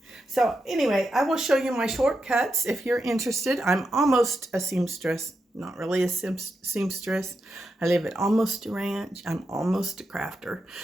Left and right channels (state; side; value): normal; both; correlation 0.86